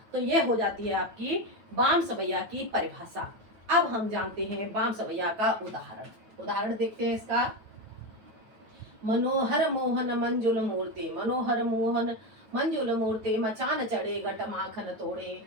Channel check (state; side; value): late; left; 9.2 ms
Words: तो ये हो जाती है आपकी बाम सवैया की परिभाषा। अब हम जानते हैं बाम सवैया का उदाहरण। उदाहरण देखते हैं इसका। मनोहर मोहन मंजुल मूर्ति, मनोहर मोहन मंजुल मूर्ति, मचान चढ़े घट माखन तोड़े,